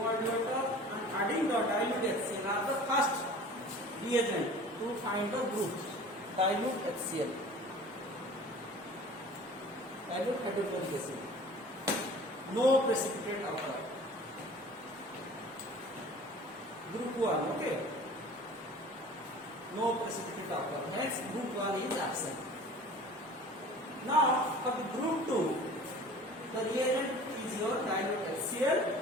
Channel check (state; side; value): normal; both; correlation 0.44